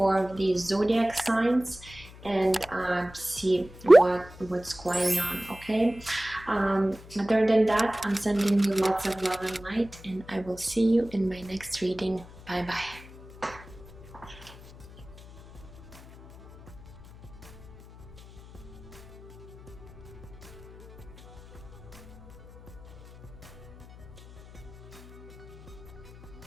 of these zodiac signs and see what's going on. Okay, other than that, I'm sending you lots of love and light, and I will see you in my next reading. Bye bye.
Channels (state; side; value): noise; left; hum, 19 dB below the sound